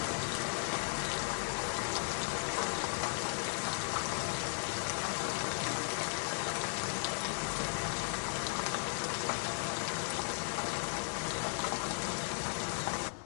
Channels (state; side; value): silent; right; digital silence